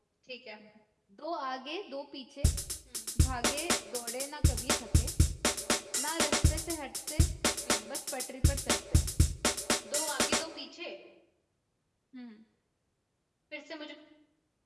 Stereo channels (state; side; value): identical; both; correlation 1.00